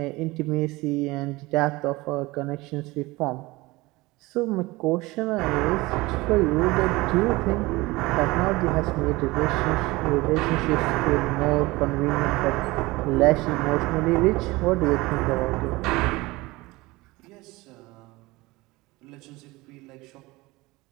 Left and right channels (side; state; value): left; quieter; 21.4 dB